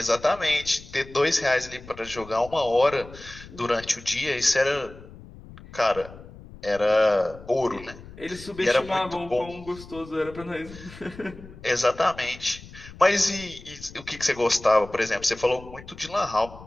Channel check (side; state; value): left; noise; rumble, 18 dB below the sound